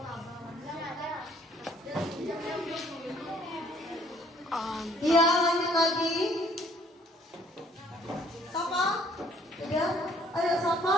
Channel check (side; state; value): both; normal; correlation 0.61